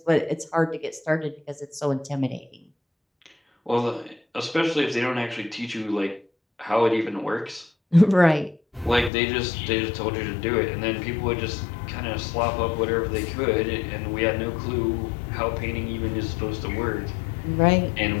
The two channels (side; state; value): right; drops out; at 9.1 s